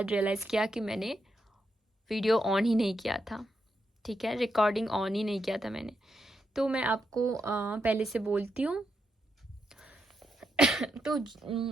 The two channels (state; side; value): normal; both; correlation 0.83